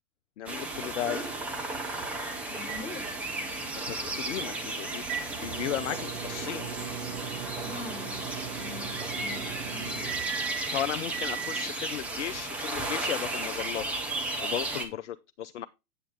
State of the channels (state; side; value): normal; both; correlation 0.20